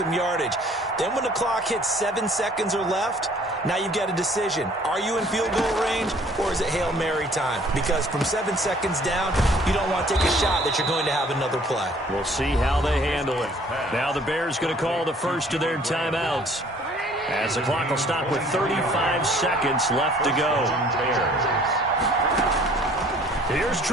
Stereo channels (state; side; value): normal; both; correlation 0.56